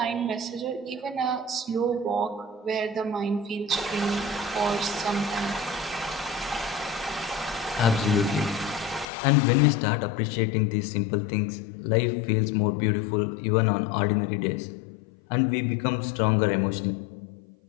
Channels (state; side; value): drops out; right; at 9.1 s